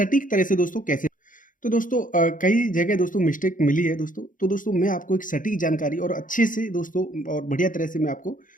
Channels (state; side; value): late; right; 0.39 ms